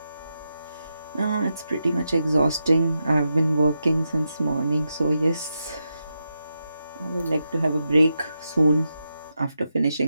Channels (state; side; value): inverted; both; correlation -0.86